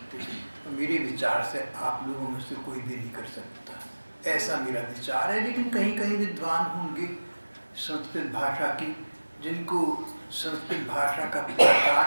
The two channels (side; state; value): both; inverted; correlation -1.00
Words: मेरे विचार से आप लोगों में से कोई भी नहीं कर सकता, ऐसा मेरा विचार है। लेकिन कहीं कहीं विद्वान होंगे संस्कृत भाषा की, जिनको संस्कृत भाषा का